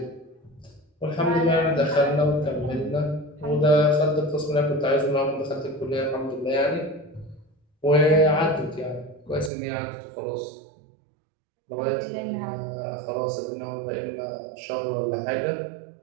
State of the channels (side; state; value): left; drops out; at 9.5 s